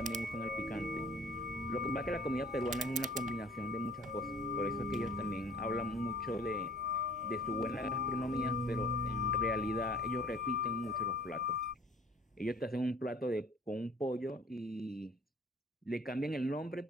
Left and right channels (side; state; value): both; normal; correlation 0.52